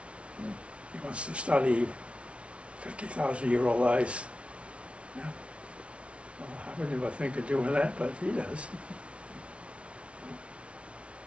Mm. he wants to study 50,000-year-old ice. Yeah. Well, I would never think of doing that, but he does.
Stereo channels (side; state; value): left; late; 0.061 ms